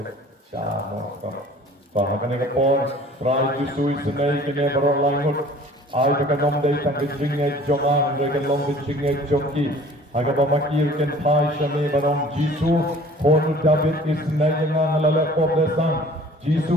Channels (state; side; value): normal; both; correlation 0.49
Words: siapa kau, bahagian ni kapor, try jusui senai kini baru lain mungkin. Ai berkenom dari tang kecingnya joman, mereka long kecingnya joki. Agar pemakir ken pai shami barong Jisu, kono David isnai yang ngalala poblesan.